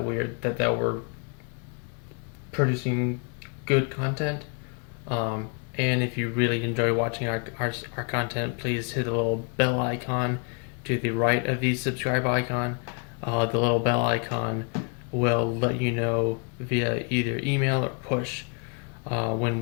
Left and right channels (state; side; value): quieter; right; 36.1 dB